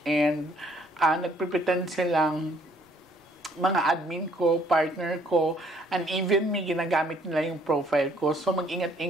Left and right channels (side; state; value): both; normal; correlation 0.63